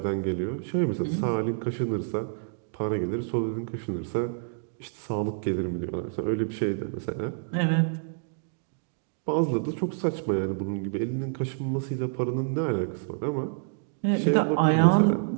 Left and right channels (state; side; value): silent; left; digital silence